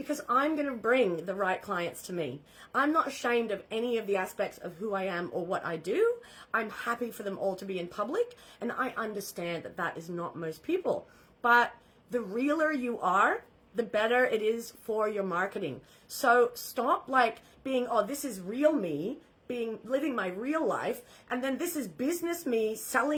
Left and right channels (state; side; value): identical; both; correlation 1.00